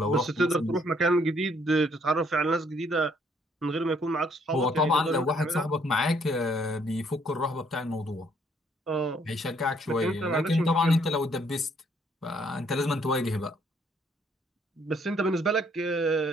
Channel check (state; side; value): normal; both; correlation 0.67